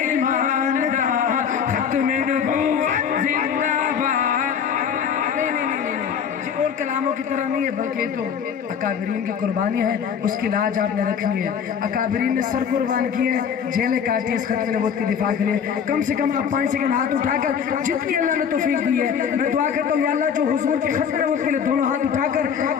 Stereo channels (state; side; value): quieter; right; 7.5 dB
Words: دا, ختم نبوت زندہ باد. اور کلاموں کی طرح نہیں ہے بلکہ تو اکابرین کی قربانی ہے, اس کی لاج آپ نے رکھنی ہے. اکابرین نے سر قربان کیے ہیں, جیلیں کاٹی اس ختم نبوت کی دفاع کے لیے. کم سے کم آپ 5 سیکنڈ ہاتھ اٹھا کر جتنی اللہ نے توفیق دی ہے میں دعا کرتا ہوں یا اللہ جو حضور کی ختم نبوت کے لیے دونوں ہاتھ اٹھا کر